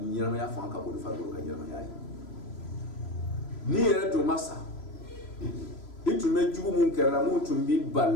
fanga ka bon ni farikolo ka ɲɛnamaya ye n'i yɛrɛ tun ma sa i tun bɛ jugu mun kɛra mun tun b'i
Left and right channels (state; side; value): late; right; 3.0 ms